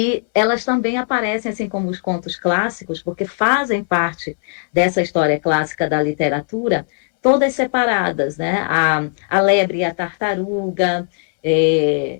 elas também aparecem, assim como os contos clássicos, porque fazem parte dessa história clássica da literatura, todas separadas, né? A lebre e a tartaruga, é,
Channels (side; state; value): right; silent; 65 dB below the other